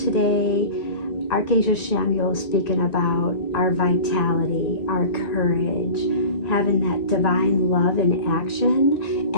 Archangel Samuel is speaking about our vitality, our courage, having that divine love in action.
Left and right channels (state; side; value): late; right; 1.7 ms